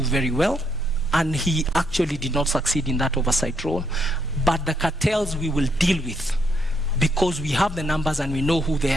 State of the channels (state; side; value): normal; both; correlation 0.75